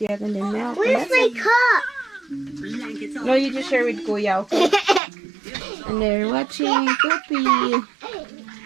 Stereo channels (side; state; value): left; drops out; at 5.0 s